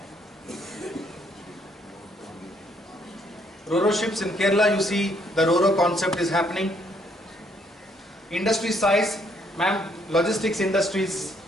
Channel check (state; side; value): normal; both; correlation 0.69